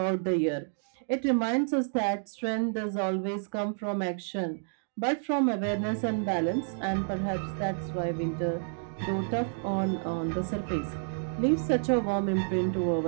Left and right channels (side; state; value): left; silent; digital silence